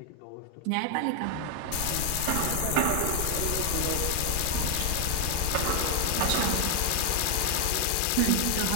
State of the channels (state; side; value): different; both; correlation 0.00